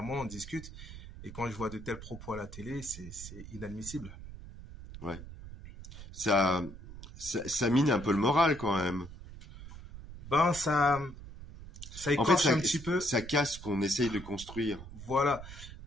on discute. Et quand je vois de tels propos à la télé, c'est inadmissible. Ouais. Ça mine un peu le moral quand même. Ben, ça écorche un petit peu. Ça casse ce qu'on essaye de construire. Voilà.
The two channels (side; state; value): right; noise; rumble, 14 dB below the sound